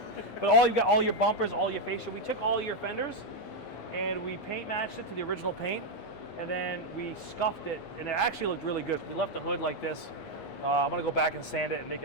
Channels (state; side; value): late; right; 9.6 ms